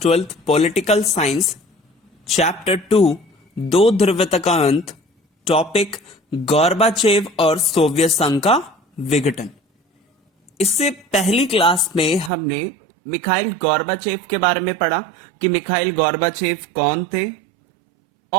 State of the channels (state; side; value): drops out; left; at 12.3 s